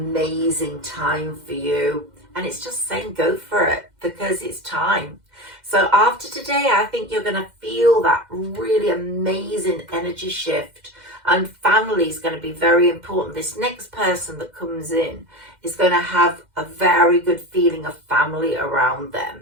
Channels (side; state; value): left; late; 2.1 ms